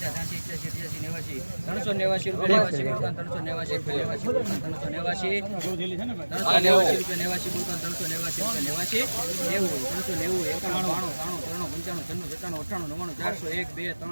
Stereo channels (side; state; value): both; inverted; correlation -1.00